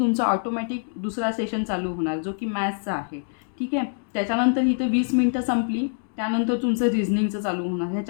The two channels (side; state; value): right; silent; digital silence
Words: ऑटोमॅटिक दुसरा सेशन चालू होणार जो की मॅथ्सचा आहे. ठीक आहे. त्याच्यानंतर इथं 20 मिनटं संपली, त्यानंतर तुमचं रिझनिंगचं चालू होणार.